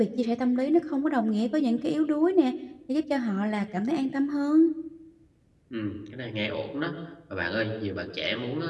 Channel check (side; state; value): both; identical; correlation 1.00